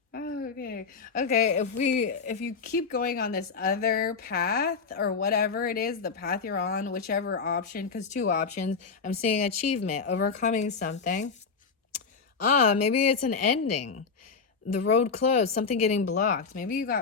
Okay. If you keep going on this other path or whatever it is, the path you're on, whichever option, because two options, I'm seeing achievement, overcoming something. Maybe it's an ending. The road closed, something getting blocked. Maybe you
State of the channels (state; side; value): quieter; right; 5.2 dB